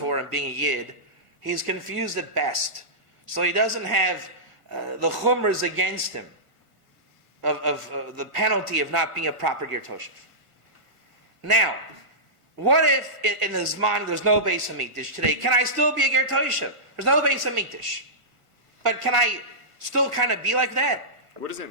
and being a Yid, he's confused at best. So he doesn't have the chumras against him of the penalty of not being a proper Ger Toshav. Now, what if in his mind there's no Beis Hamikdash today? Can I still be a Ger Toshav? There's no Beis Hamikdash. But can I still kind of be like that? What does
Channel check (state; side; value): late; left; 1.6 ms